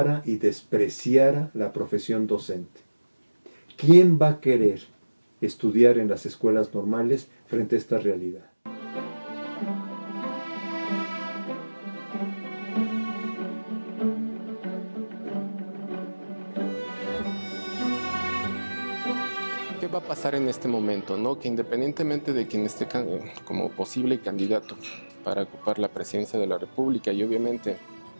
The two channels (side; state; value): both; inverted; correlation -1.00